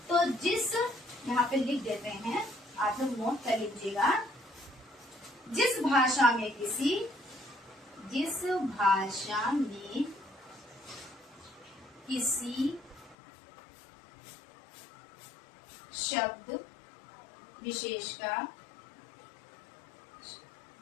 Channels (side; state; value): right; drops out; at 13.2 s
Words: तो जिस, यहाँ पे लिख देते हैं, आप लोग नोट कर लीजिएगा, जिस भाषा में किसी शब्द विशेष का